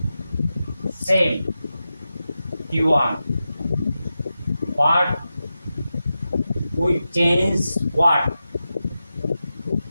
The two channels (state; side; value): inverted; both; correlation -0.92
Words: same T1, but we change what?